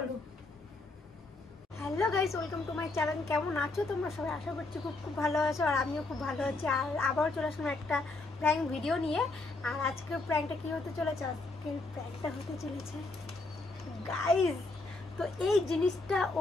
hello guys welcome to my channel কেমন আছো তোমরা সবাই আশা করছি খুব ভালো আছো আর আমিও খুব ভালো আছি আর আবার চলে আসলাম একটা প্র্যাঙ্ক ভিডিও নিয়ে আর আজকের প্র্যাঙ্কটা কি হতে চলেছে আজকের প্র্যাঙ্কটা হতে চলেছে গাইস তো এই জিনিসটা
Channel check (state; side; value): quieter; right; 3.2 dB